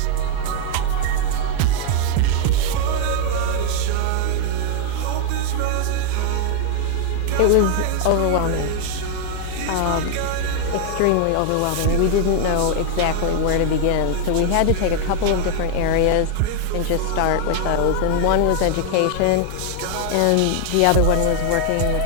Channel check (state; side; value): different; both; correlation 0.00